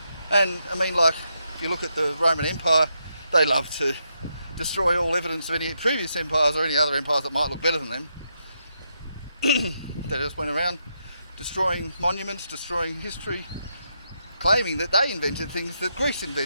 And I mean, like, if you look at the Roman Empire, they love to destroy all evidence of any previous empires or any other empires that might look better than them. They just went around destroying monuments, destroying history, claiming that they invented things that Greece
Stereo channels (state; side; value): inverted; both; correlation -0.81